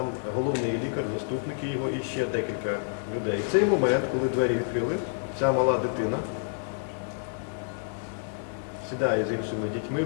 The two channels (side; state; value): right; silent; digital silence